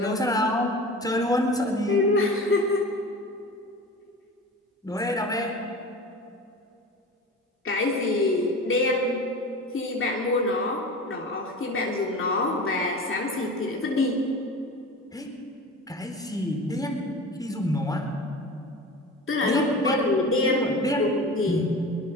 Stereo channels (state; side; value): normal; both; correlation 0.34